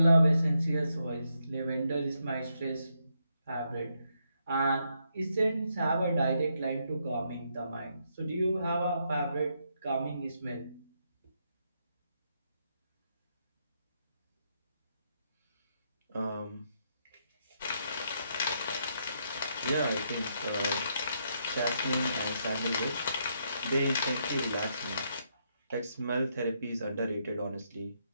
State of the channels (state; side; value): inverted; both; correlation -0.78